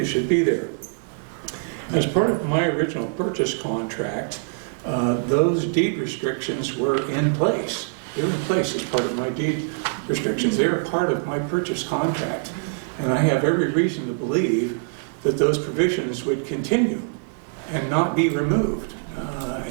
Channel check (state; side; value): silent; left; 63 dB below the other